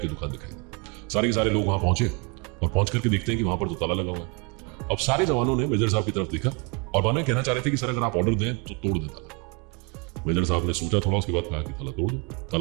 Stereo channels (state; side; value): quieter; left; 30.4 dB